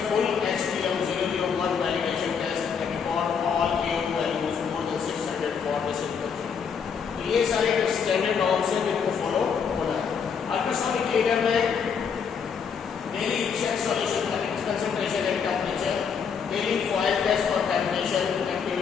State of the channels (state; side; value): quieter; right; 6.6 dB